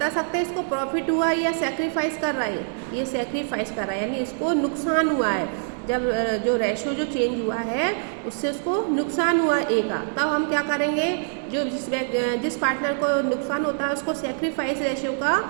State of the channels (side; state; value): left; silent; digital silence